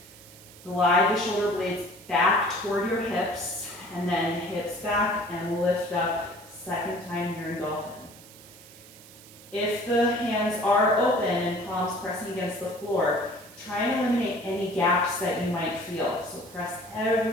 Glide the shoulder blades back toward your hips, and then hips back and lift up. Second time here in dolphin. If the hands are open and palms pressing against the floor, try and eliminate any gaps that you might feel. So press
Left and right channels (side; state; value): right; noise; hiss, 20 dB below the sound